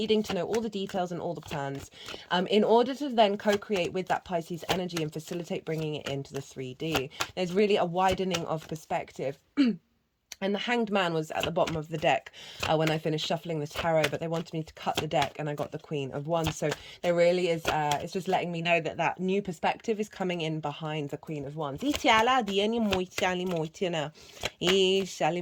to know all the details and all the plans in order to then co-create with that Pisces energy and facilitate bringing it into the 3D. There's really a widening of perspective. And the Hanged Man was at the bottom of the deck when I finished shuffling the tarot, but they wanted me to cut the deck, and I got the Queen of Wands. So there really is, it's just letting me know that that new perspective is coming in behind the Queen of Wands. There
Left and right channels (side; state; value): both; identical; correlation 1.00